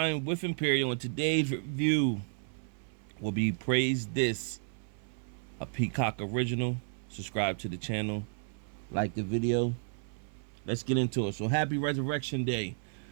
with Imperial, and today's review will be Praise This, a Peacock original. Subscribe to the channel, like the video. Let's get into it. So, happy Resurrection Day.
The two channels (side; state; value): left; silent; 56 dB below the other